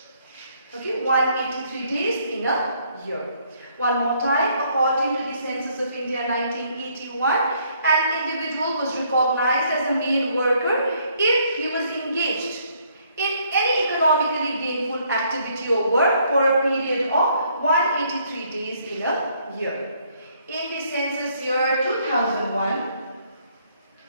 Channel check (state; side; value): inverted; both; correlation -0.67